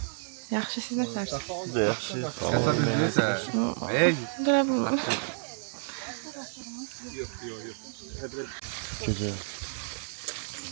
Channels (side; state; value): left; silent; digital silence